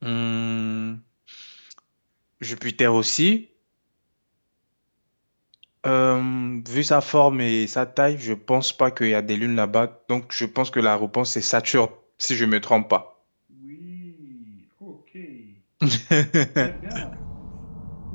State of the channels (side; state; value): both; inverted; correlation -1.00